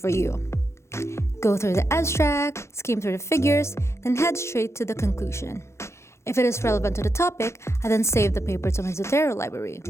you. Go through the abstract, skim through the figures, then head straight to the conclusion. If it is relevant to the topic, I then save the paper to my Zotero library.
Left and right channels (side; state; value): right; late; 0.13 ms